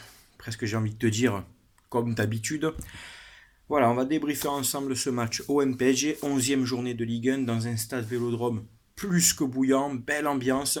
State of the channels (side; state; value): both; identical; correlation 1.00